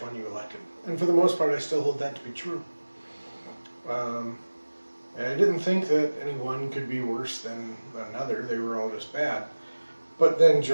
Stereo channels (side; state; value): both; inverted; correlation -1.00